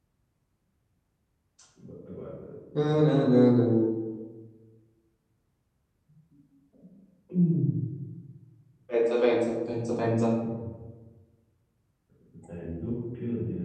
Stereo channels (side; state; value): both; identical; correlation 1.00